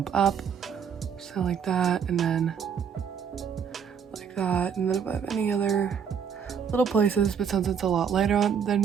up. So like that, and then like that, and then if I have any other little places, but since it's a lot lighter than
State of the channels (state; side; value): quieter; left; 7.2 dB